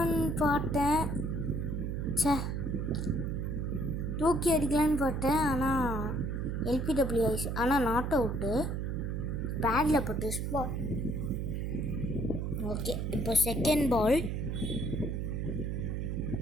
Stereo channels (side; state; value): right; noise; hum, 1 dB below the sound